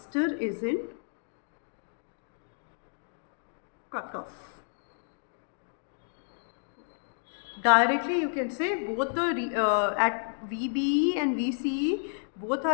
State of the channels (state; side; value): silent; right; digital silence